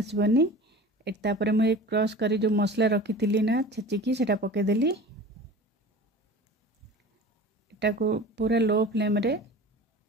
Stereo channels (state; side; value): normal; both; correlation 0.38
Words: तापर मुझे क्रश करी जो मसला रखी थी ना छेचिकी सेटा पकईदेली। एटा को पूरा लो फ्लेम रे